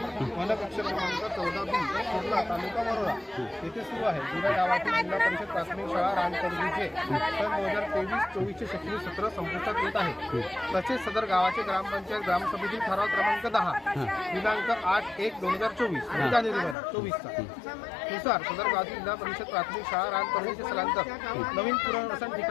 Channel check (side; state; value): right; drops out; at 16.8 s